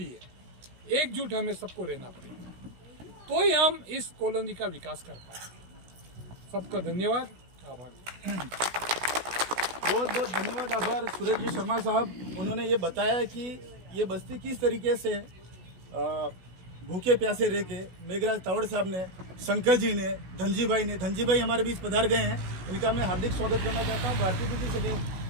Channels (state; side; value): late; left; 16 ms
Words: एकजुट हमें सबको रहना पड़ेगा, तो ही हम इस कॉलोनी का विकास कर पाएंगे। सबका धन्यवाद, आभार। बहुत बहुत धन्यवाद, आभार सूरज जी शर्मा साहब। उन्होंने ये बताया कि ये बस्ती किस तरीके से भूखे प्यासे रह के मेघराज तावड़ साहब ने, शंकर जी ने, धनजी भाई हमारे बीच पधार गए हैं, इनका मैं हार्दिक स्वागत करना चाहता हूँ। भारतीय दीदी से